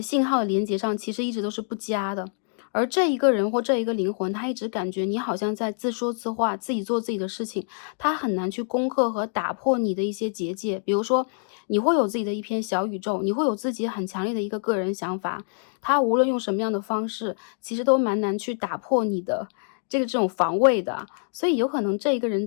信号的连接上，其实一直都是不佳的。而这一个人或这一个灵魂，他一直感觉你好像在自说自话，自己做自己的事情，他很难去攻克和打破你的一些结界。比如说，你会有自己的一片小宇宙，你会有自己很强烈的一个个人想法，他无论用什么样的方式，其实都蛮难去打破你的这种防卫的。所以有可能这一个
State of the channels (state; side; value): silent; right; digital silence